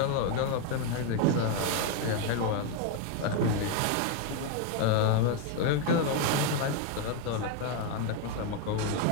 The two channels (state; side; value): different; both; correlation 0.01